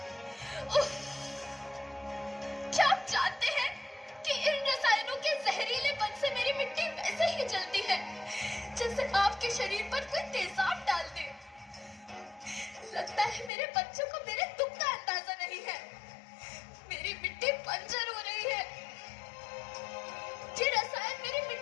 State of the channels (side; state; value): right; drops out; at 13.5 s